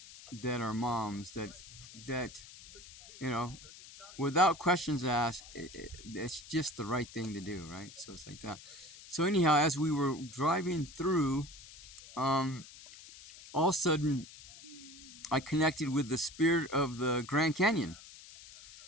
are moms that without questions asked, it's just the right thing to do, right? So it's like that. So anyhow, as we were driving through, all of a sudden I connected with the spirit of the Grand Canyon.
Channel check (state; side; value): noise; left; hiss, 17 dB below the sound